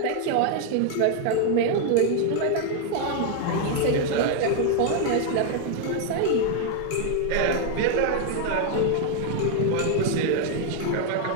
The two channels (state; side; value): different; both; correlation 0.00